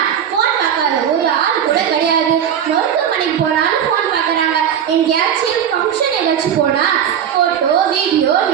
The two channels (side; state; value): left; quieter; 9.1 dB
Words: ஃபோன் பார்க்காத ஒரு ஆள் கூட கிடையாது. மருத்துவமனைக்கு போனாலும் ஃபோன் பார்க்குறாங்க. எங்கேயாச்சும் ஃபங்க்ஷன் ஏதாச்சும் போனால் ஃபோட்டோ வீடியோ